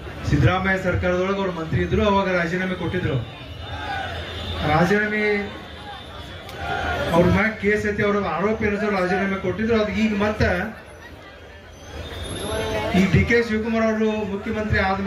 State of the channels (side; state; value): both; identical; correlation 1.00